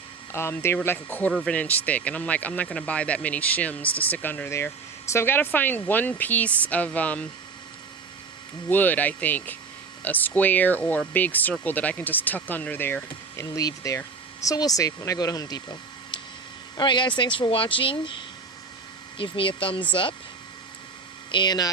They were like 1/4 of an inch thick. And I'm like, I'm not going to buy that many shims to stick under there. So I've got to find 1 piece of wood, I think, a square or a big circle that I can just tuck under there and leave there. So we'll see when I go to Home Depot. Alright guys, thanks for watching. Give me a thumbs up, and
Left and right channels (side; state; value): left; quieter; 4.7 dB